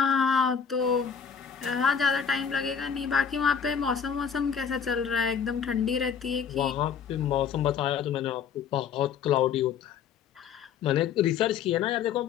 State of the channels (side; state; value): right; quieter; 7.2 dB